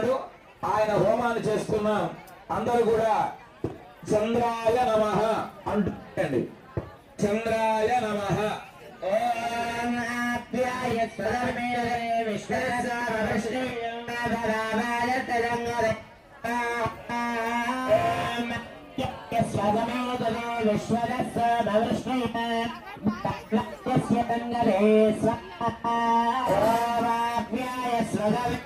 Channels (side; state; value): both; identical; correlation 1.00